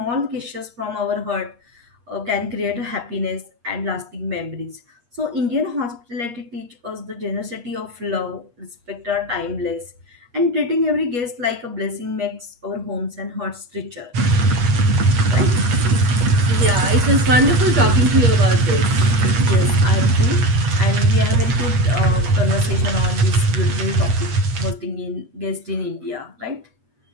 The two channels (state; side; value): late; left; 8.4 ms